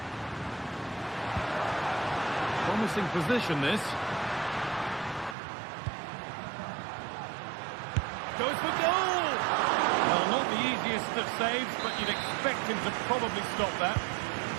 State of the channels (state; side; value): drops out; left; at 5.4 s